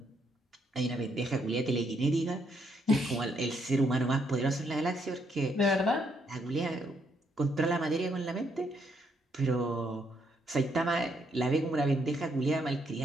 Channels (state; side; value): normal; both; correlation 0.74